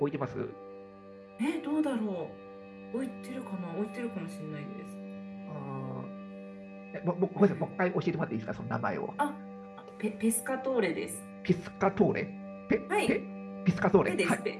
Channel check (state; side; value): identical; both; correlation 1.00